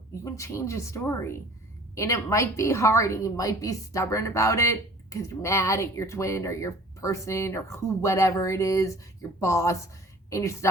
you can change a story. And it might be hard and you might be stubborn about it because you're mad at your twin or your person or whatever it is, your boss, and you're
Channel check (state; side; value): normal; both; correlation 0.49